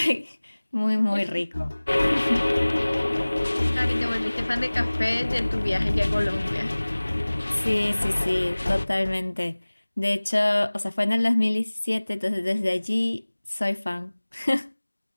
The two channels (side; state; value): both; inverted; correlation -1.00